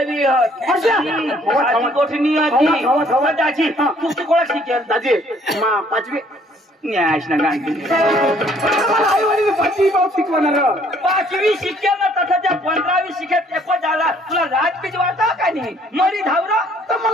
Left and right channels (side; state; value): both; normal; correlation 0.61